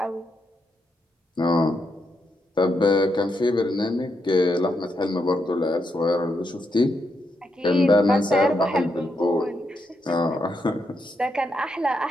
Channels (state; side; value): normal; both; correlation 0.81